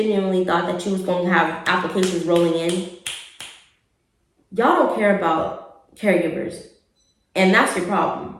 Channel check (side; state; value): both; identical; correlation 1.00